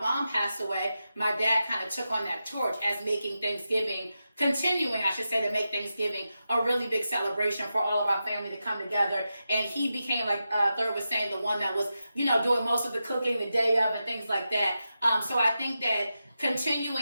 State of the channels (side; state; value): both; inverted; correlation -0.90